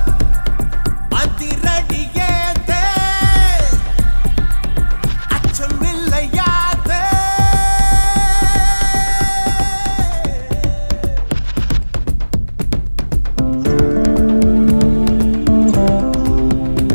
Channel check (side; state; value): both; inverted; correlation -1.00